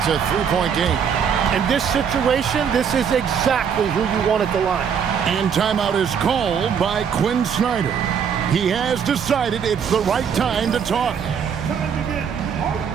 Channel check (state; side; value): quieter; left; 7.3 dB